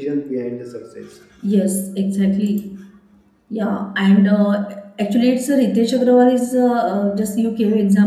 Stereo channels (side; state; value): both; identical; correlation 1.00